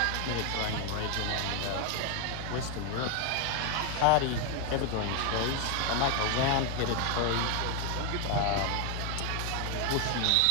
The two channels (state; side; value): different; both; correlation 0.01